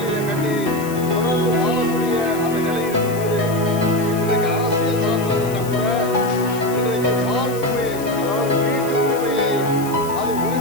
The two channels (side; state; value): left; noise; hiss, 14 dB below the sound